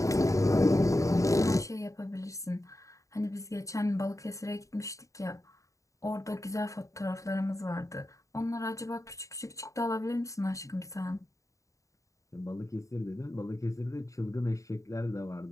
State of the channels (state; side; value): late; right; 0.16 ms